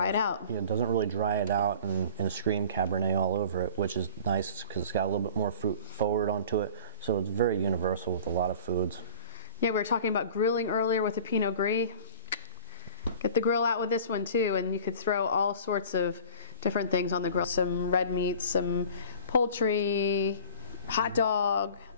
it out. Yeah, it doesn't really dry it out and scream Cabernet all over it, which is nice because it's got a little bit more fruit forward onto it. So it's very universal with a lot of foods. Yeah, we were talking about grilling earlier with the Pinot Gris. Get the grill out with this one too, and you could throw all sorts of different things on the grill. Some red meat, some poultry, hot dog,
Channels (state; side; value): inverted; both; correlation -0.43